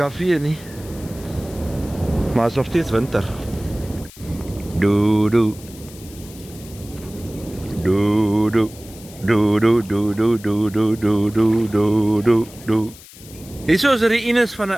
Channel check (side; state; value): left; noise; hiss, 20 dB below the sound